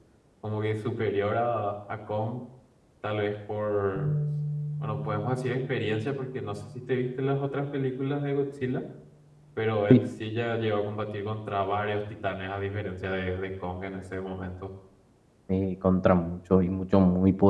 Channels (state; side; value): identical; both; correlation 1.00